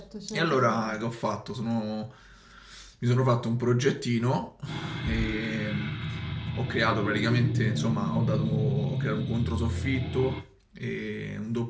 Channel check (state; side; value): identical; both; correlation 1.00